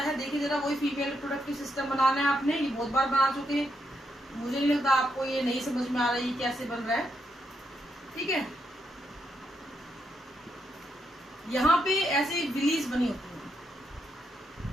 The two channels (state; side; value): normal; both; correlation 0.80